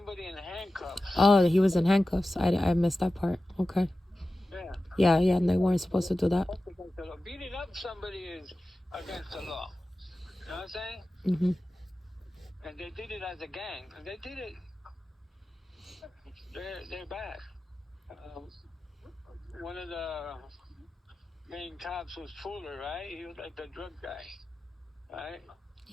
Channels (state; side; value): normal; both; correlation 0.95